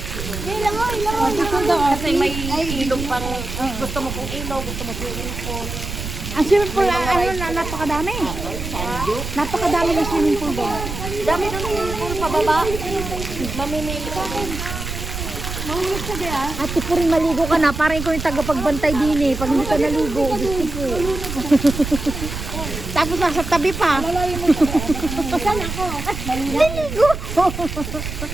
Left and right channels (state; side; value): noise; right; rumble, 7 dB below the sound